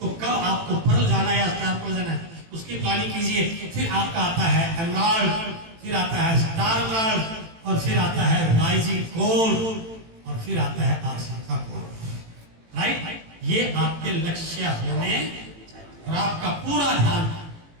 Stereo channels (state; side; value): late; left; 18 ms